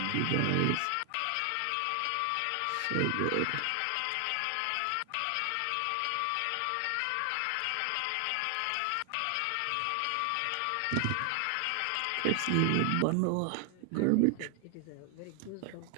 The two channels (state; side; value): different; both; correlation 0.00